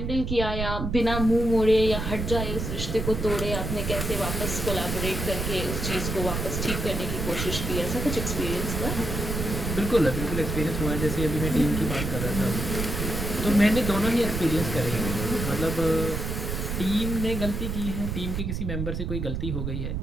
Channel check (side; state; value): right; noise; rumble, 3 dB below the sound